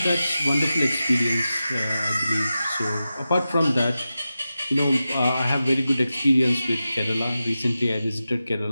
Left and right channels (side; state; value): both; inverted; correlation -0.92